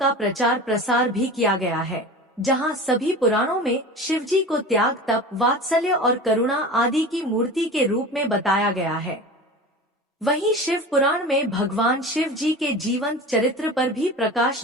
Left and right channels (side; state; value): both; normal; correlation 0.34